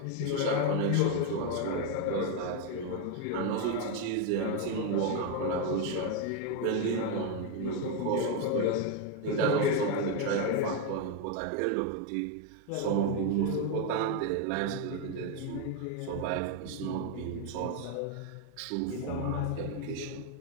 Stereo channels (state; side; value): different; both; correlation 0.02